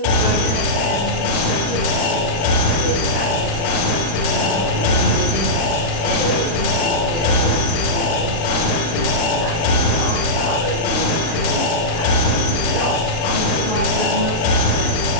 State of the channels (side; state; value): right; late; 36 ms